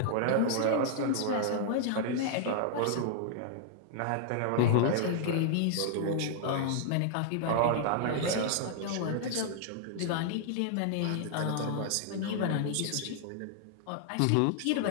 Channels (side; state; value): both; different; correlation -0.01